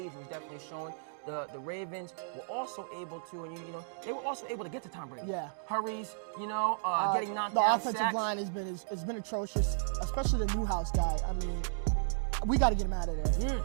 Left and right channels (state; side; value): silent; left; digital silence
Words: was definitely showing. The Ravens were also able to, they were also able to get to Tom Brady. Yeah. Hurries, getting knocked out. The offensive line has been atrocious, especially the Newhouse guy. I mean, we got to get him out of there.